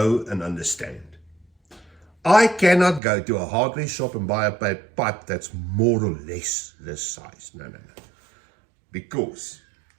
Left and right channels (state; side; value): drops out; left; at 3.0 s